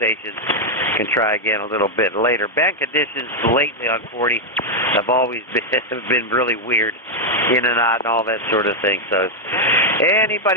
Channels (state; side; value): normal; both; correlation 0.00